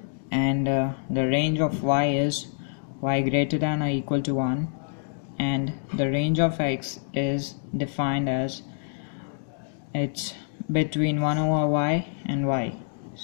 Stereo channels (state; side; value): silent; right; digital silence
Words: and the range of y is y greater than or equal to 1, and the range of x is defined as it's between 1 over y and y.